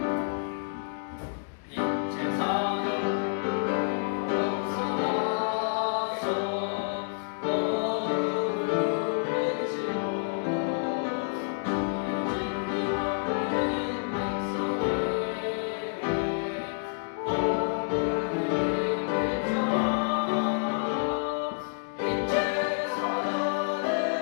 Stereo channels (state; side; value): silent; right; digital silence